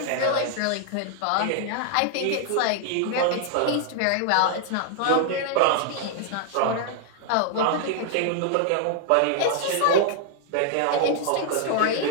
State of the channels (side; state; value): both; different; correlation 0.00